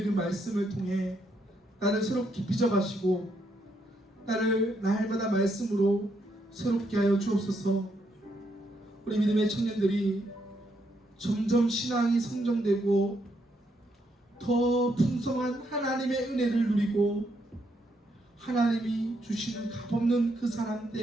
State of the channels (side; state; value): both; normal; correlation 0.76